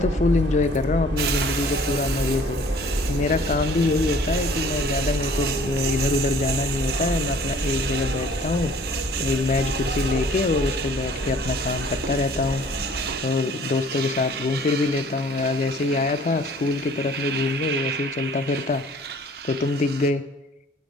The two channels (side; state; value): both; normal; correlation 0.53